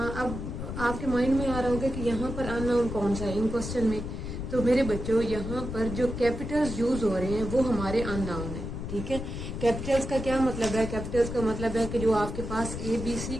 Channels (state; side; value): noise; left; rumble, 6 dB below the sound